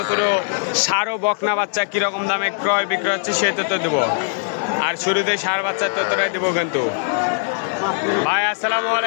ছোট ষাঁড় ও বকনা বাচ্চা কিরকম দামে ক্রয় বিক্রয় হচ্ছে সেই তথ্য দেবো। আর শুরুতে ষাঁড় বাচ্চার তথ্যটাই দেবো কিন্তু। ভাই আসসালামু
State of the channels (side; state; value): right; silent; digital silence